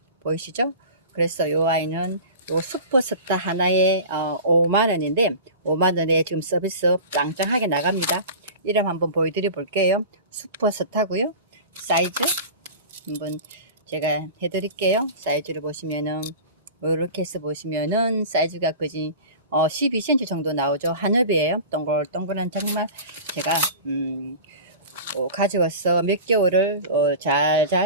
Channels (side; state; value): both; inverted; correlation -0.35